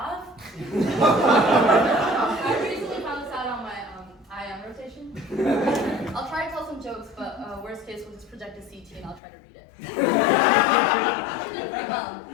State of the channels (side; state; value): right; drops out; at 9.2 s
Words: I recently found this out on my IM rotation. I'll try to tell some jokes, but worst case, we'll just project a CT and I'll try to read it. Actually did pretty well.